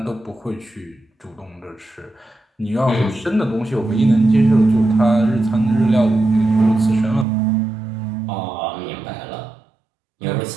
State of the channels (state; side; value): drops out; left; at 7.2 s